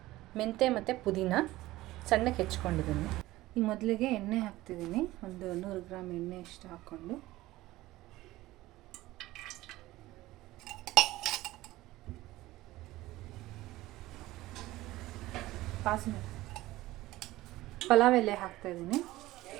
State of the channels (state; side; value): quieter; left; 17.4 dB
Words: ಮೆಂತ್ಯ ಮತ್ತು ಪುದೀನ ಸಣ್ಣಕ್ಕೆ ಹೆಚ್ಕೊಂಡಿದ್ದೀನಿ. ಈಗ ಮೊದಲಿಗೆ ಎಣ್ಣೆ ಹಾಕ್ತಿದ್ದೀನಿ. ಒಂದು 100 ಗ್ರಾಮ್ ಎಣ್ಣೆ ಅಷ್ಟು ಹಾಕ್ಕೊಂಡು ಪಲಾವ್ ಎಲೆ ಹಾಕ್ತಾಯಿದ್ದೀನಿ.